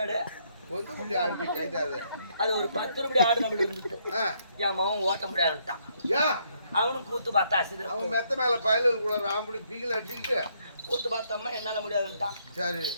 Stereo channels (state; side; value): inverted; both; correlation -0.71